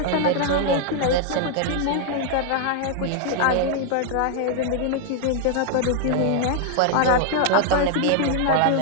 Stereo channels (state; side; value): different; both; correlation 0.00